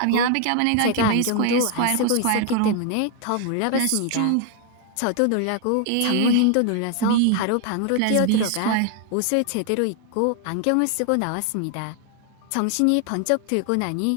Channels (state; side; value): different; both; correlation 0.00